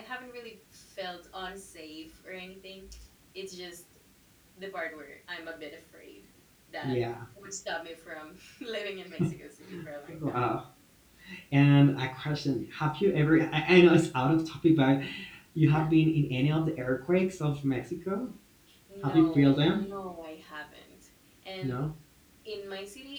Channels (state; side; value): identical; both; correlation 1.00